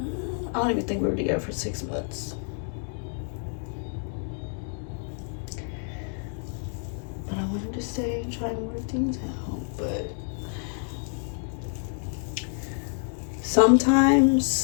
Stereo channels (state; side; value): silent; right; 59 dB below the other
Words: I don't even think we were together for 6 months. But I wanted to stay and try and work things out. But